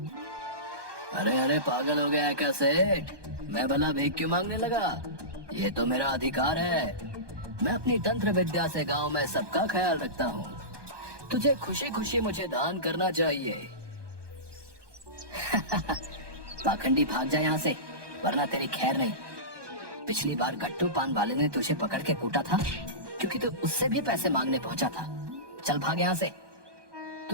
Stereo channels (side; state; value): left; late; 1.2 ms